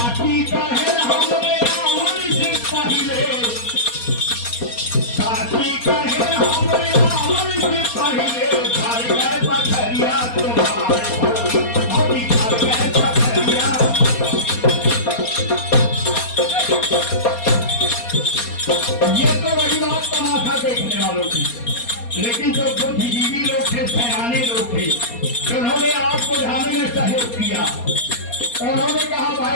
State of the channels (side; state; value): right; late; 4.2 ms